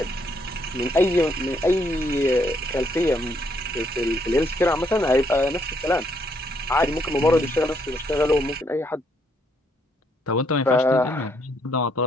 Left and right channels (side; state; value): both; normal; correlation 0.72